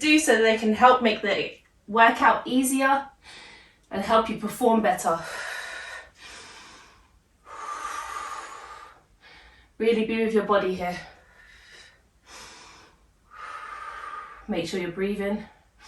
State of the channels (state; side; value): identical; both; correlation 1.00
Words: so they can help make the workout easier and help you perform better. Really be with your body here. Make sure you're breathing.